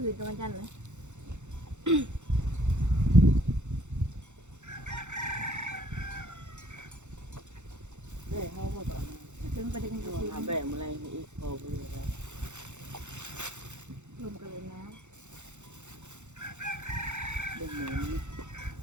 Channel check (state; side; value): late; left; 0.83 ms